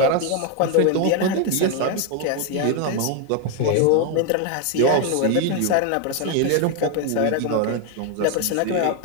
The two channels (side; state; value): both; different; correlation 0.01